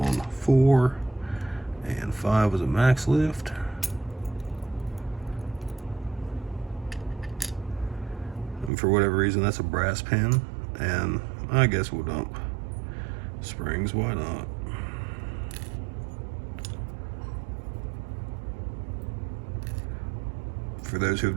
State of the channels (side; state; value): left; drops out; at 8.7 s